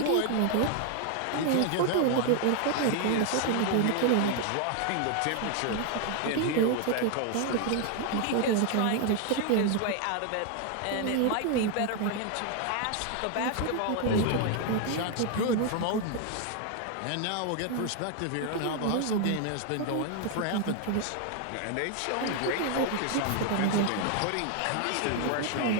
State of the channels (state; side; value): different; both; correlation 0.00